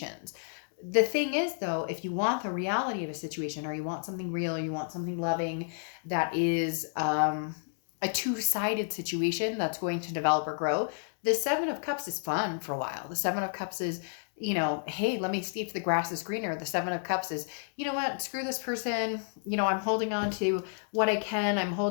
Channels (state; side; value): silent; right; digital silence